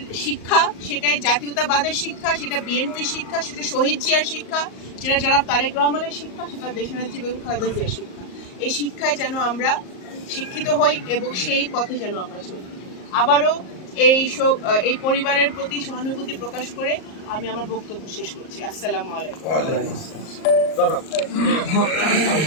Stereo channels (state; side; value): late; right; 38 ms